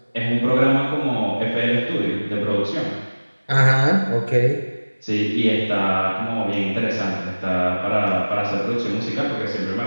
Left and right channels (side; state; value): both; inverted; correlation -1.00